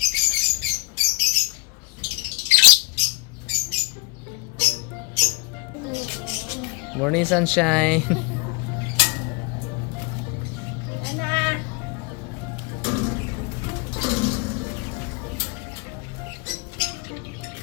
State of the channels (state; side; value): quieter; right; 28.9 dB